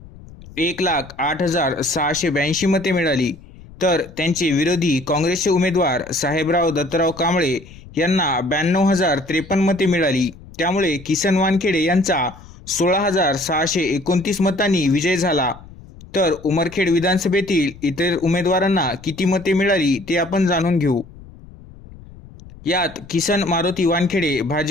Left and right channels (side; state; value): left; noise; rumble, 19 dB below the sound